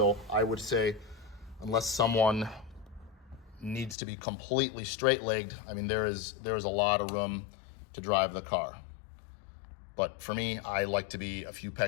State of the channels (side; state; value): right; drops out; at 4.0 s